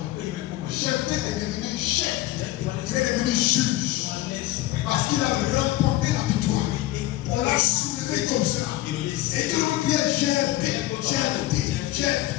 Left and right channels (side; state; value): right; quieter; 16.3 dB